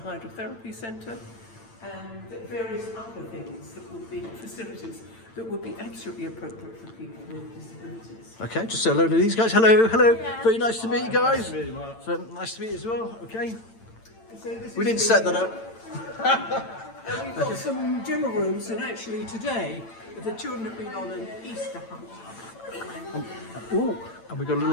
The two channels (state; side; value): late; right; 8.9 ms